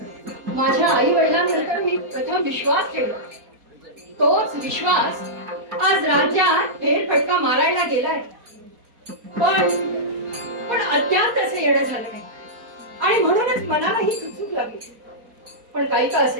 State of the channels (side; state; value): left; late; 4.2 ms